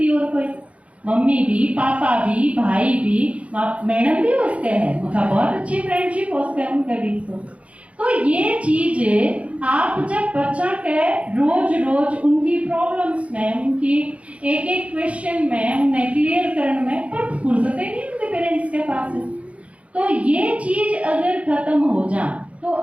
और कोई, मम्मी भी, पापा भी, भाई भी, मैडम भी उसके हैं, मैं कहा बहुत अच्छी फ्रेंडशिप उसके उनके बीच। तो ये चीज आप जब बच्चा के रोज रोज उनकी प्रॉब्लम्स में, उनकी एक एक क्वेश्चन में उन्हें क्लियर करने में, पर फुर्सतें नहीं उनके पेरेंट्स के पास है, तो ये चीज अगर खत्म हो जाए तो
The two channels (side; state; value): left; late; 0.064 ms